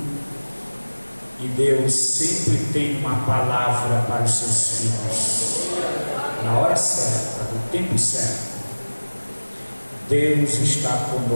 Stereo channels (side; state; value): both; inverted; correlation -1.00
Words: E Deus sempre tem uma palavra para os seus filhos, na hora certa, no tempo certo. Deus está